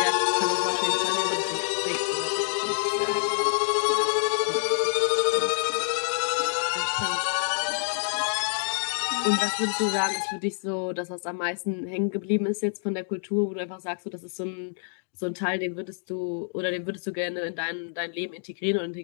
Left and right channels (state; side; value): silent; right; digital silence